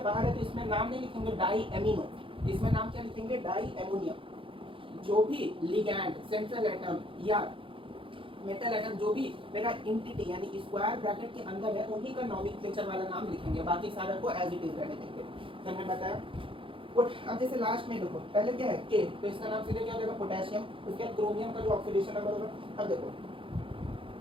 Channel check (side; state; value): left; late; 0.25 ms